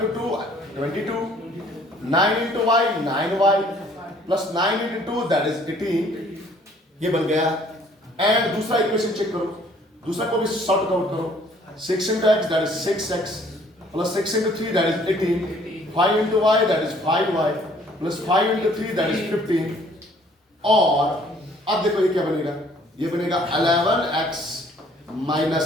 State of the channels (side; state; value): both; normal; correlation 0.58